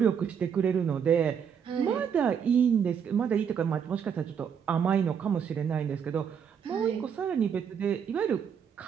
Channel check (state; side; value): quieter; left; 7.5 dB